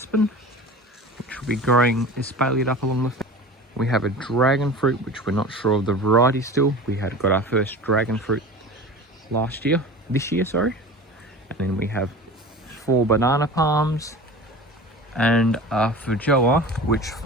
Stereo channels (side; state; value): both; normal; correlation 0.36